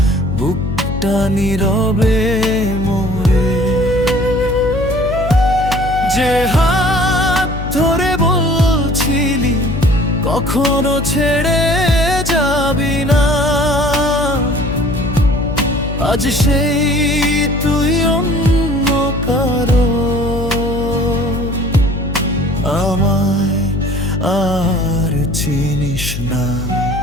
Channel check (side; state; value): left; noise; hum, 6 dB below the sound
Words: বুকটা নীরবে মরে। যে হাত ধরে বলছিলি কখনো ছেড়ে যাবি না, আজ সেই তুই অন্য কারো। আমায় আর চিনিস না,